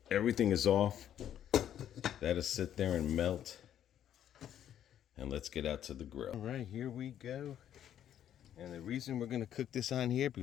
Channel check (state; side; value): quieter; right; 10.4 dB